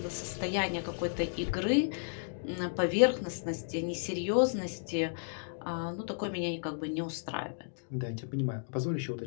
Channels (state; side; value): silent; right; digital silence